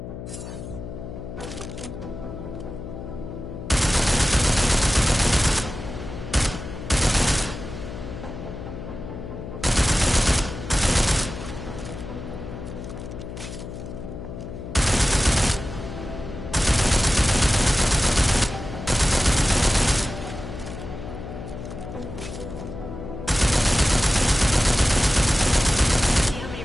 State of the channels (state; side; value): noise; left; hum, 10 dB below the sound